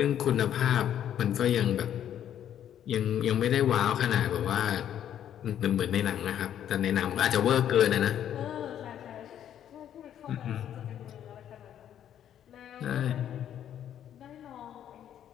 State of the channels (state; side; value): quieter; right; 10.3 dB